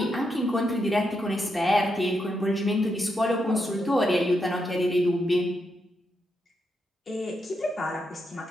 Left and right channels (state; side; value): normal; both; correlation 0.83